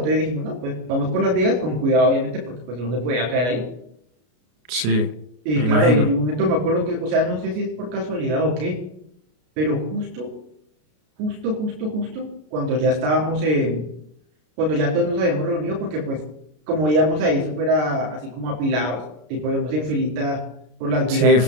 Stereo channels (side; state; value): left; late; 33 ms